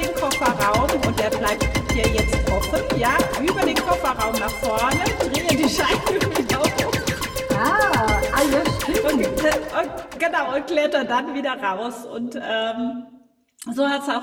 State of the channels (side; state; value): both; identical; correlation 1.00